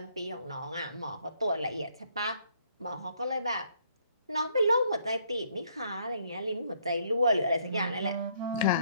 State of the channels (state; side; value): inverted; both; correlation -0.67